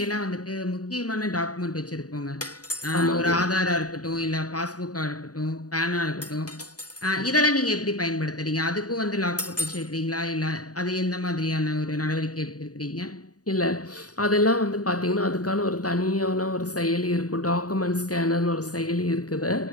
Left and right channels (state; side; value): late; right; 0.67 ms